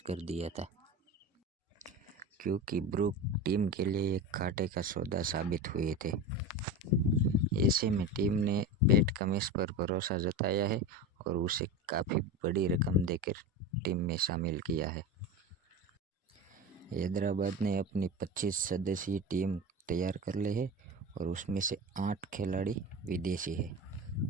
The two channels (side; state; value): both; normal; correlation 0.26